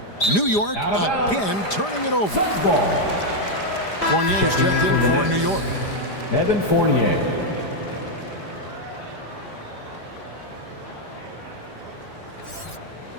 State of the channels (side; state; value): right; late; 5.0 ms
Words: New York again turning it over. Fournier's checked in for New York. Evan Fournier.